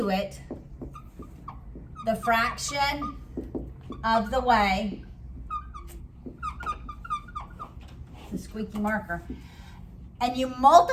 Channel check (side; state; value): both; identical; correlation 1.00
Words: it the fraction of the way, the squeaky marker, and you